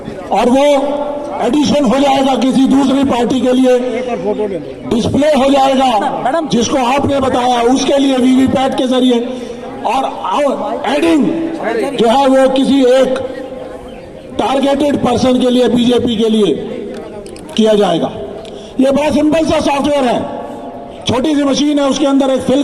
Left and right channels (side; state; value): both; identical; correlation 1.00